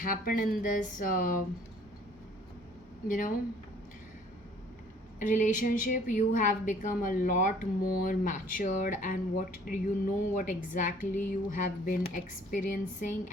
in this you know relationship. You have become a lot more matured, and what exactly you have been experiencing,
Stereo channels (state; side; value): normal; both; correlation 0.56